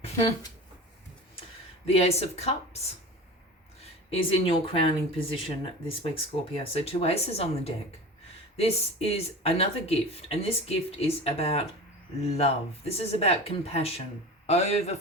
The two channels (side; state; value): both; normal; correlation 0.33